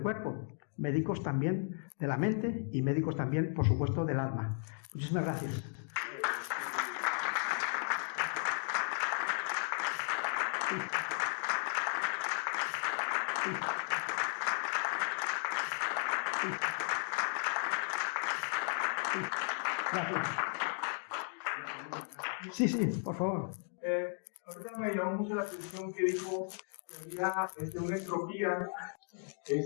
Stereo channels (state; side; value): silent; right; 54 dB below the other